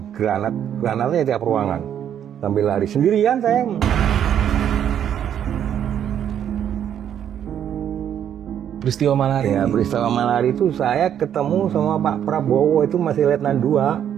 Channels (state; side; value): quieter; left; 9.6 dB